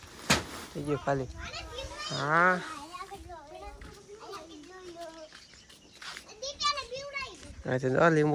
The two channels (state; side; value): identical; both; correlation 1.00